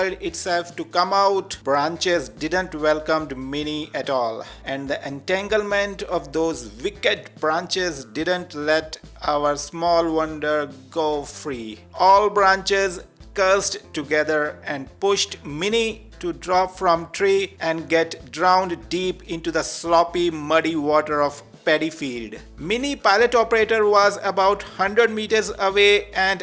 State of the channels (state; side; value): identical; both; correlation 1.00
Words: itself to come out. Branches didn't welcome Minnie at all, and the entanglement of those wicked branches didn't let our small wonder go free. All branches cursed together and pushed Minnie to drop from tree and get drowned deep into the sloppy muddy water of paddy field. Mini pilot operator was about 100 meters away